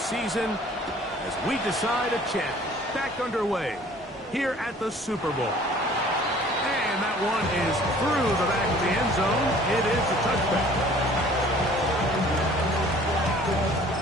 as we decide a champ back underway here at the Super Bowl. And that one is through the back of the end zone. It is a touchback.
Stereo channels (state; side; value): normal; both; correlation 0.52